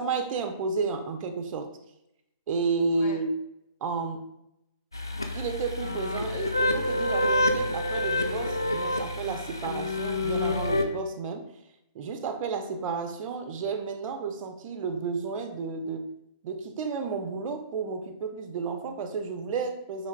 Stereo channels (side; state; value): both; inverted; correlation -0.57